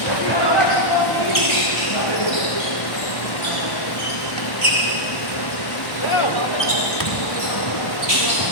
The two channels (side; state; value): right; late; 1.1 ms